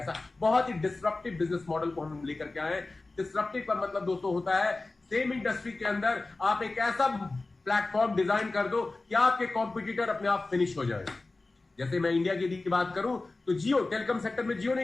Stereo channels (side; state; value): right; quieter; 3.3 dB